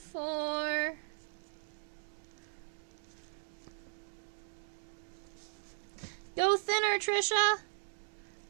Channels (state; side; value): silent; left; digital silence